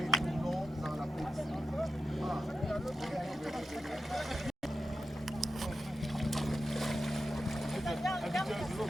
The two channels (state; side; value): normal; both; correlation 0.90